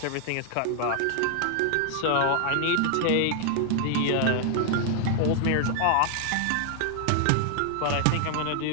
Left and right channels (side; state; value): both; different; correlation 0.00